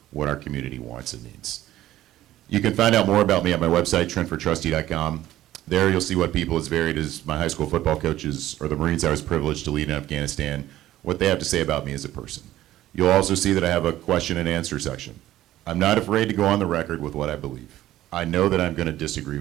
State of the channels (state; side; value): quieter; left; 14.2 dB